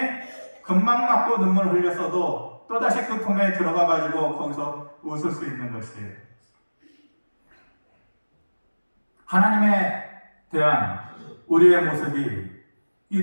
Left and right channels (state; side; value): inverted; both; correlation -1.00